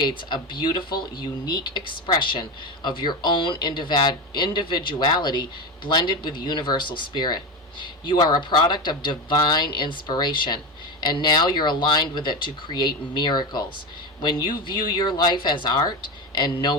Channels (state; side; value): normal; both; correlation 0.20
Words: a beautiful, unique expression of your own individuality blended with universal spirit. You are a product of divine inspiration, and now you're aligned with it to create miracles. When you view your life as art and